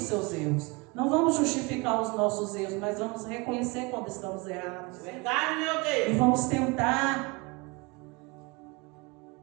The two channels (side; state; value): left; quieter; 26.8 dB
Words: seus erros. Não vamos justificar os nossos erros, mas vamos reconhecer quando estamos errados. Verdade, meu Deus. E vamos tentar